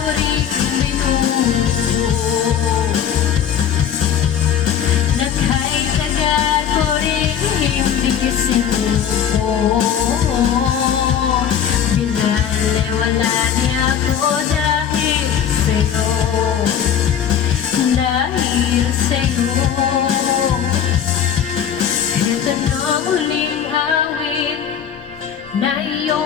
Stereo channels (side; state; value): right; quieter; 8.7 dB